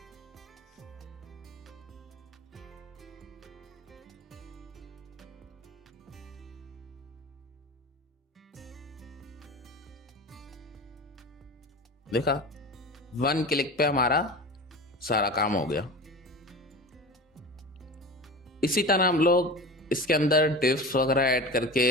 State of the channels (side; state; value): both; normal; correlation 0.32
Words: देखा, 1 क्लिक पे हमारा सारा काम हो गया। इसी तरह हम लोग इसके अंदर डिफ्स वगैरह ऐड